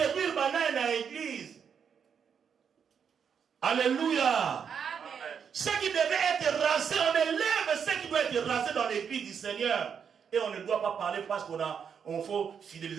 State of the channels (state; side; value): quieter; left; 7.1 dB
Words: banane na église. Alléluia. Amen. Ce qui devait être rasé, on élève ce qui doit être rasé dans l'église du Seigneur. Et on ne doit pas parler parce qu'on faut